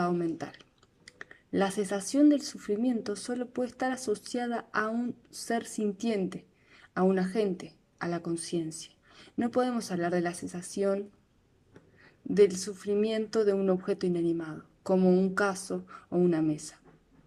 mental. La cesación del sufrimiento solo puede estar asociada a un ser sintiente, a un agente, a la conciencia. No podemos hablar de la cesación del sufrimiento de un objeto inanimado, como un caso o una mesa.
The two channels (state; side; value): identical; both; correlation 1.00